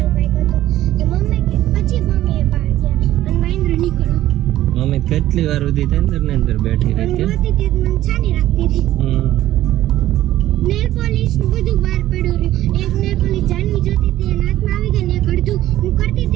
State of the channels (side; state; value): left; quieter; 14.1 dB